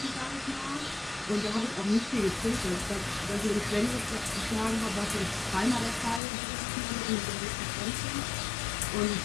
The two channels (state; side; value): drops out; right; at 6.2 s